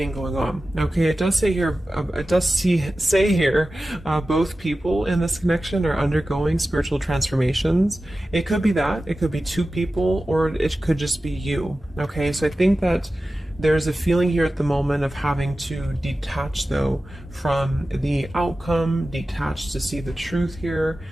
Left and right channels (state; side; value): normal; both; correlation 0.95